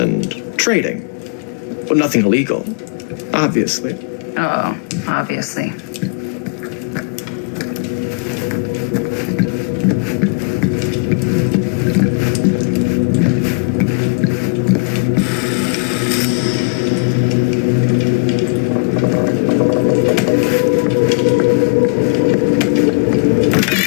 trading. But nothing illegal, obviously. Oh, obviously.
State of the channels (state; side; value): quieter; right; 34.2 dB